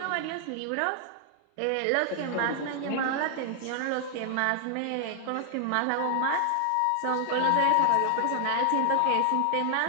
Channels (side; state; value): both; different; correlation 0.00